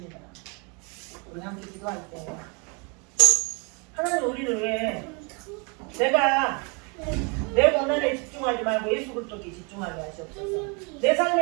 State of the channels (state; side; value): quieter; left; 32.6 dB